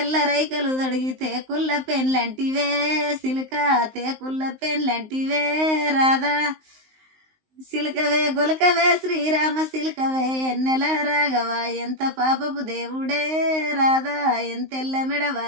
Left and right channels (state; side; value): late; left; 19 ms